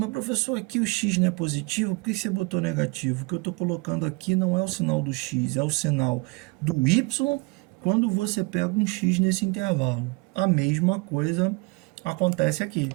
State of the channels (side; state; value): left; quieter; 26.8 dB